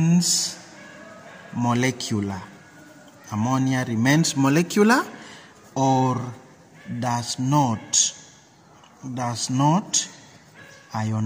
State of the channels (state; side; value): identical; both; correlation 1.00